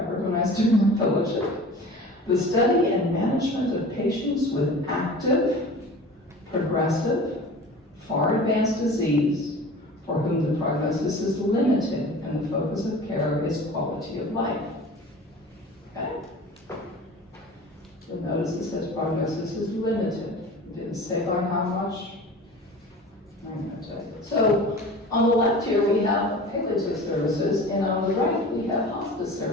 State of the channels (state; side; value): normal; both; correlation 0.39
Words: when I was doing my fellowship, the study and management of patients with active, progressive, far advanced disease for whom the prognosis is limited and the focus of care is quality of life. Okay? You'll notice it says prognosis is limited. It didn't say by how much. I'm going to tell you. So on the left here we have palliative services, and on the right we have hospice